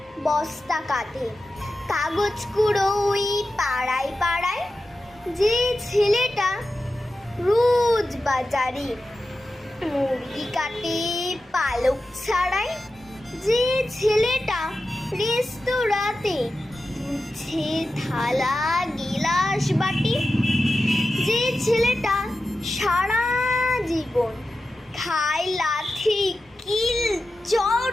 বস্তা কাঁধে কাগজ কুড়ো ওই পাড়ায় পাড়ায়, যে ছেলেটা রোজ বাজারে মুরগি কাটে পালক ছাড়ায়, যে ছেলেটা রেস্তোরাঁতে ধুচ্ছে থালা গিলাস বাটি, যে ছেলেটা সারা জীবন খায় লাথি কিল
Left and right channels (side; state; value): both; normal; correlation 0.92